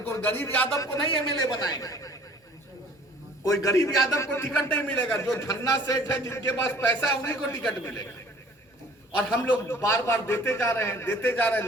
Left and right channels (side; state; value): both; normal; correlation 0.51